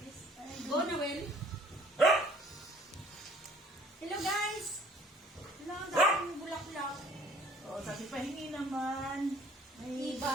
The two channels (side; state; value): both; normal; correlation 0.55